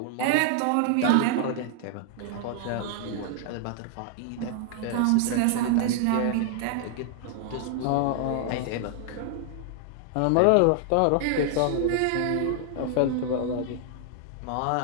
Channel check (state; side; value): different; both; correlation 0.00